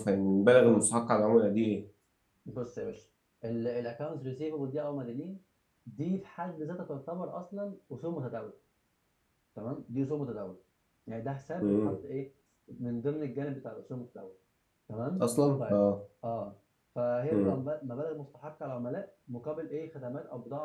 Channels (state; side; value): identical; both; correlation 1.00